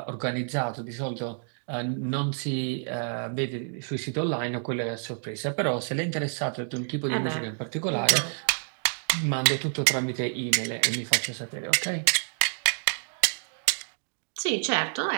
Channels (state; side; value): silent; left; digital silence